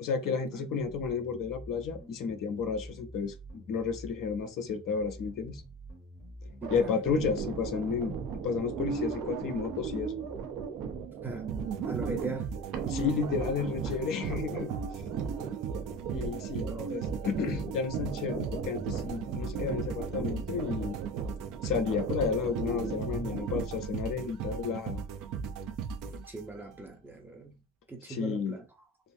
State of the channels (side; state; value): both; normal; correlation 0.31